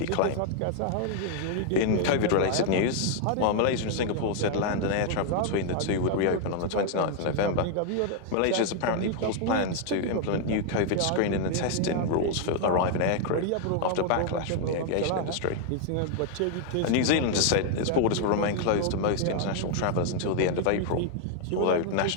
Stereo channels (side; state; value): both; different; correlation 0.00